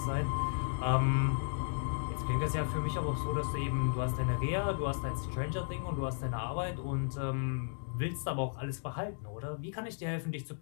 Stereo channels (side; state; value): right; silent; digital silence